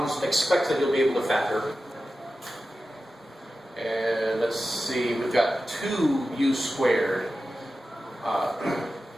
expect that you'll be able to factor. And let's see, we've got 2u squared.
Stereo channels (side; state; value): both; normal; correlation 0.93